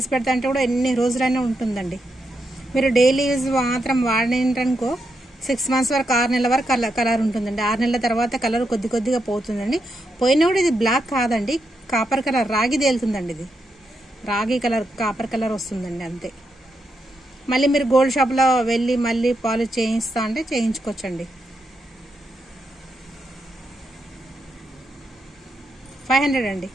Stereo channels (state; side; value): normal; both; correlation 0.83